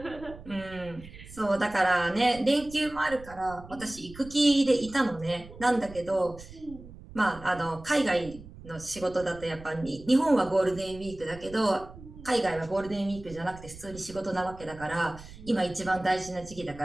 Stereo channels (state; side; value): noise; right; rumble, 17 dB below the sound